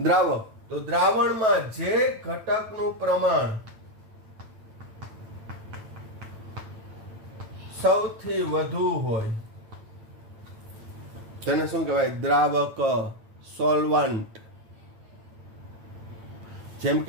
તો દ્રાવણમાં જે ઘટકનું પ્રમાણ સૌથી વધુ હોય તેને શું કહેવાય? દ્રાવક, સોલ્વન્ટ. જેમ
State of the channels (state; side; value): late; left; 9.0 ms